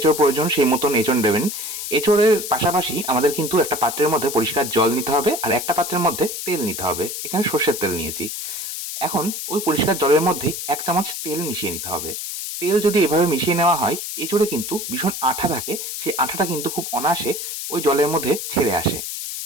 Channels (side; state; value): left; noise; hiss, 6 dB below the sound